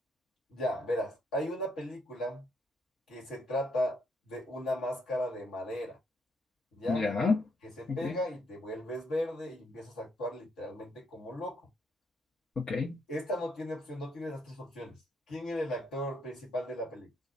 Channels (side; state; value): both; normal; correlation 0.74